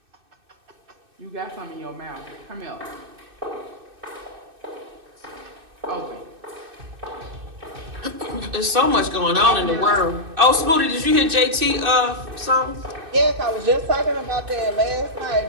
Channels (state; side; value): late; left; 2.6 ms